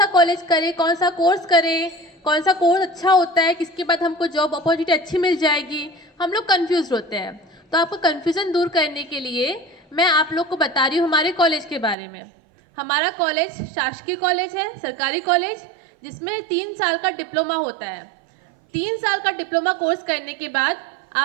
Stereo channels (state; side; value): drops out; left; at 12.0 s